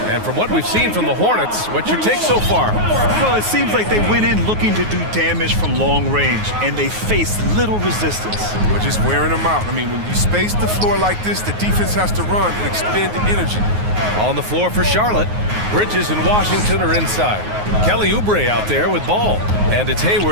And from what we've seen from the Hornets, what's your take so far? Well, it seems like they went in looking to do damage from long range, and they faced little resistance. We're just wearing them out. I mean, when you space the floor like this, the defense has to run and expend the energy. On the floor for Charlotte, Bridges and Washington are inside. Kelly Oubre out there with Ball, and it's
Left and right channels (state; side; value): late; left; 9.5 ms